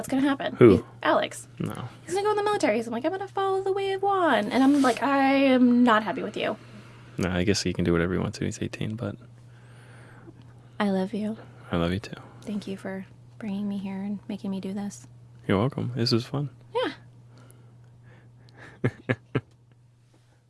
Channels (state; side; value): identical; both; correlation 1.00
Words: going to happen? Who? Alex. No. He's going to go in the military. So I'm like, I'm going to follow the way of Juan. And I'm like, I am not happy with you. No, I guess he can do whatever he wants to. He's 18, but I love you. I love you, too. Thank you for bringing me here and making me do this. You're welcome. This was fun. Yeah.